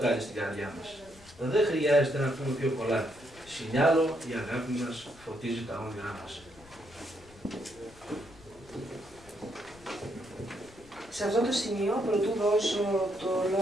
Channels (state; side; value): noise; left; rumble, 23 dB below the sound